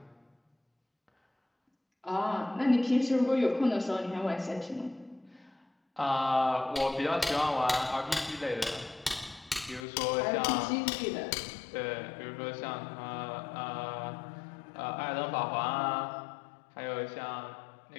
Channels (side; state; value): right; drops out; at 9.9 s